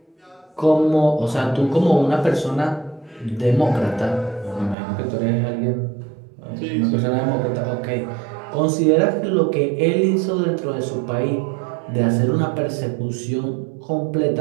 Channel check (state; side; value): drops out; left; at 4.8 s